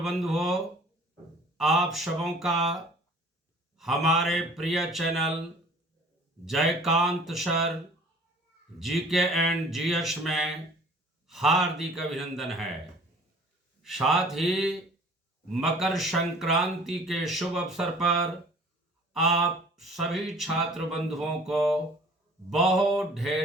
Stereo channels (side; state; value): both; normal; correlation 0.50